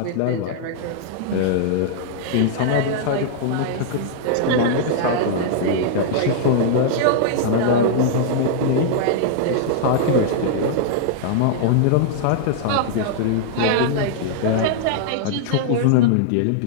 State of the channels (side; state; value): both; different; correlation -0.01